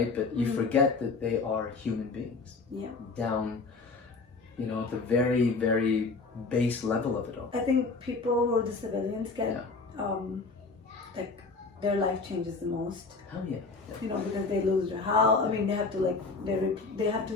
But you forget that they are human beings. Yeah. Down, you know, at the very, very base level of it all. I think people who are the civilians get, like, their life changes the most. Hell yeah. You know, because they lose their house. I mean, they have to like, they have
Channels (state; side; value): quieter; right; 4.1 dB